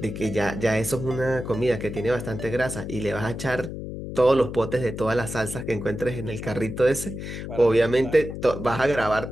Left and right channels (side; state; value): left; noise; hum, 8 dB below the sound